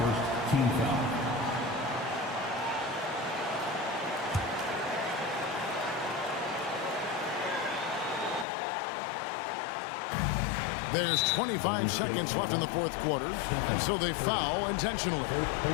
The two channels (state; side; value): drops out; right; at 8.5 s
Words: team foul. There's 25 seconds left in the fourth quarter, and so they foul intentionally. First